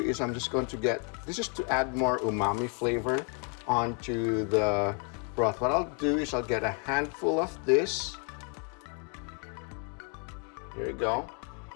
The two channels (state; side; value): quieter; right; 38.9 dB